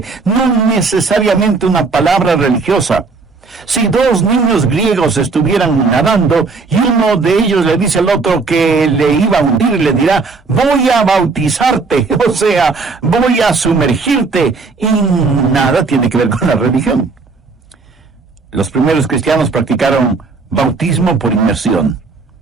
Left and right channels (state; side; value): quieter; left; 4.2 dB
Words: no necesariamente una palabra religiosa. Si dos niños griegos estuvieran nadando y uno de ellos le dice al otro que le iba a hundir, le dirá: voy a bautizarte, o sea, voy a sumergirte, y nada tiene que ver con la religión. Los primeros cristianos practicaron bautismo por inmersión.